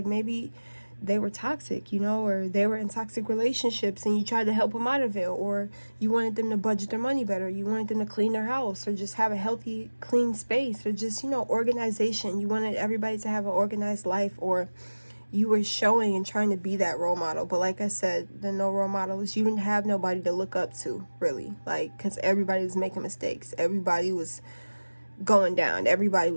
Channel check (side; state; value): both; inverted; correlation -1.00